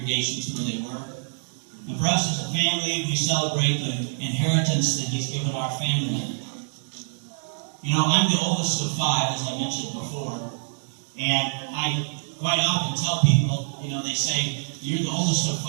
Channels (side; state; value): left; silent; digital silence